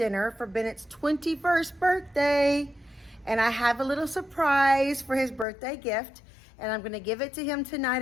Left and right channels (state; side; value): drops out; right; at 5.5 s